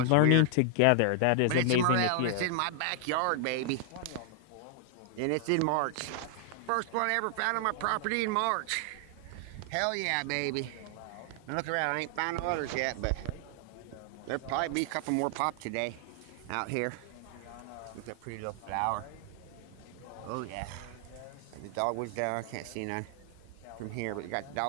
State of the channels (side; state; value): both; different; correlation 0.00